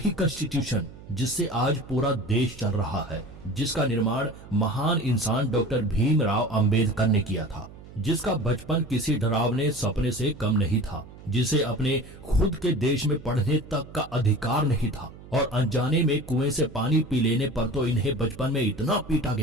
कॉन्स्टिट्यूशन जिससे आज पूरा देश चल रहा है, जिसका निर्माण महान इंसान डॉक्टर भीमराव अंबेडकर ने किया था, जिसका बचपन किसी डरावने सपने से कम नहीं था, जिसे अपने खुद के देश में पढ़ने तक का अधिकार नहीं था और अनजाने में कुएं से पानी पी लेने पर तो इन्हें बचपन में इतना पीटा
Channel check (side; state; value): right; noise; hum, 18 dB below the sound